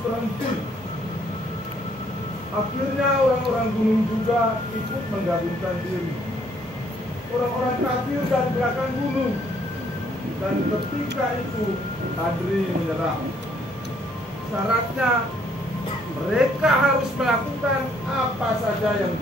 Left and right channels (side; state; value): both; normal; correlation 0.66